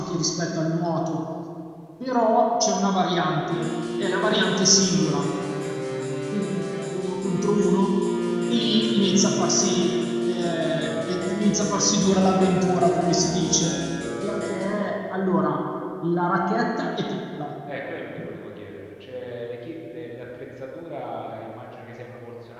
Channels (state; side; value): identical; both; correlation 1.00